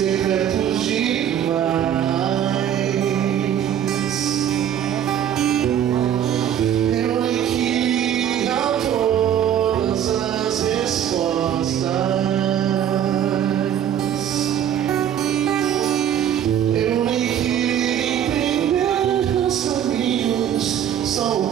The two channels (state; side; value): quieter; left; 9.8 dB